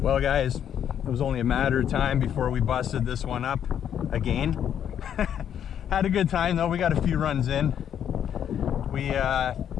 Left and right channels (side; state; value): right; quieter; 9.3 dB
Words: Well guys, it was only a matter of time before we busted this one up again. Had a good time though. We got a few runs in. We're